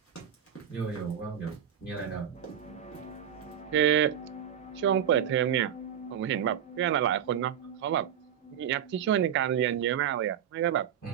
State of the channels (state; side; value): quieter; left; 9.4 dB